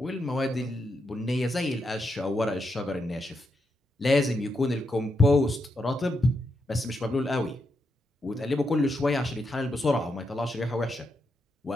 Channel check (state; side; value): normal; both; correlation 0.82